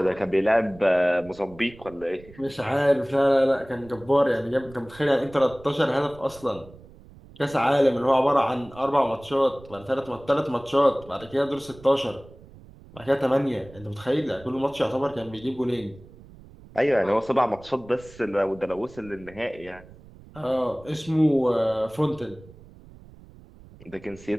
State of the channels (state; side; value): noise; right; rumble, 21 dB below the sound